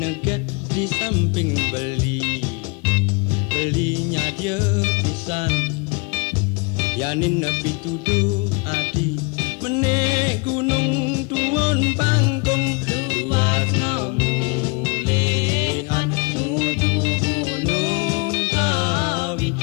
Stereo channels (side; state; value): right; quieter; 30.7 dB